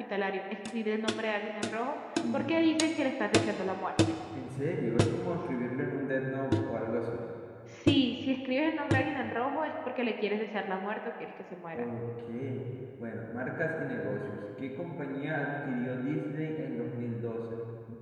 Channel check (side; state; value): both; identical; correlation 1.00